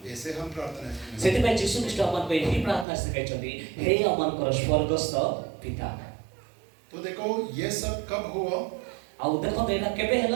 ऐसे हम प्रार्थना करते हैं। सेति पे यीशु ख्रीष्ट हमन को यही प्रार्थना सिखाइछथि, हे हमन को स्वर्गस्थ पिता। तो देखो ये सब कब हुआ? और देखो देना केबे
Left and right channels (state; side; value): drops out; left; at 2.9 s